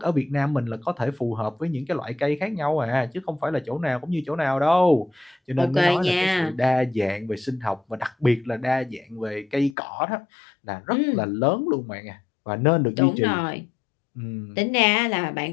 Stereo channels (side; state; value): right; drops out; at 9.8 s